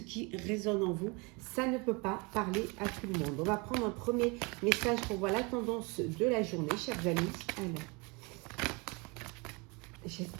résonne en vous. Ça ne peut pas parler à tout le monde. On va prendre un premier message pour voir la tendance de la journée, chers amis. Alors.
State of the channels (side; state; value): left; quieter; 28.9 dB